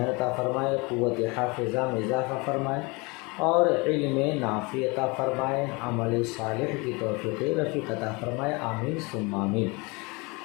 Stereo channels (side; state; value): right; quieter; 27.2 dB